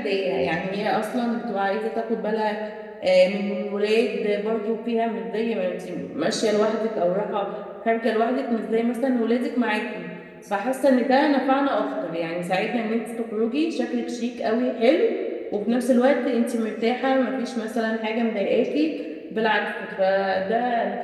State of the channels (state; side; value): identical; both; correlation 1.00